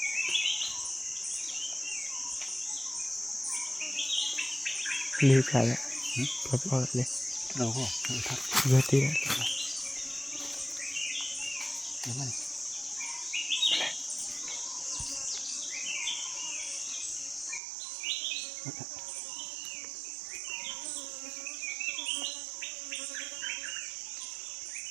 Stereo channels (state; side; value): drops out; left; at 17.6 s